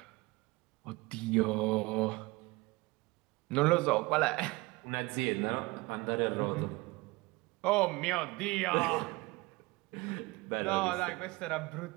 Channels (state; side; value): quieter; left; 23.0 dB